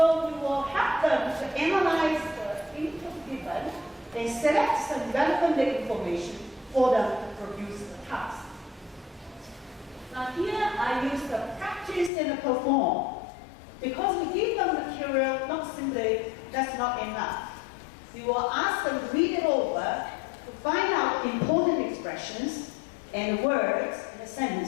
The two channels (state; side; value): drops out; right; at 12.1 s